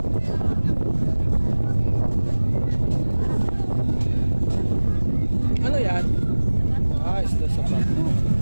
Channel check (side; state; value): both; inverted; correlation -1.00